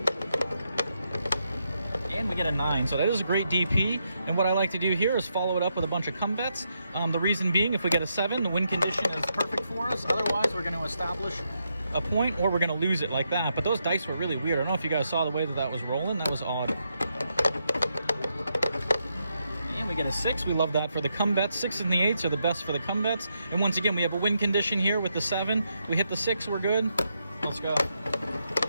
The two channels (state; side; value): inverted; both; correlation -0.81